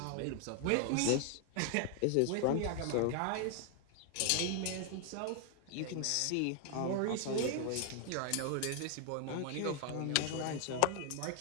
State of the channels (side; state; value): both; different; correlation 0.00